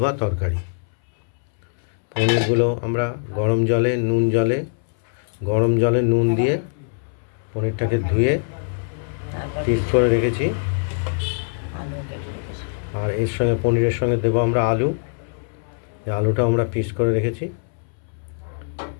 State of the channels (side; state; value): right; silent; 64 dB below the other